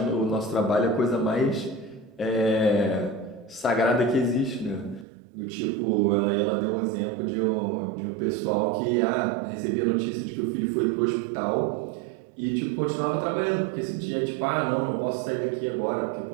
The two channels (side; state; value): left; drops out; at 5.1 s